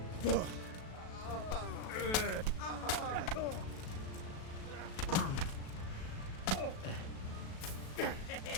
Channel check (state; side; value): late; right; 37 ms